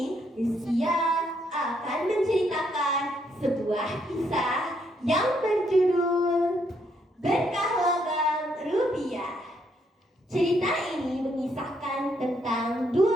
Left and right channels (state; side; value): normal; both; correlation 0.73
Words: Rizkia akan menceritakan sebuah kisah yang berjudul Berkah Logam Rupiah. Cerita ini mengisahkan tentang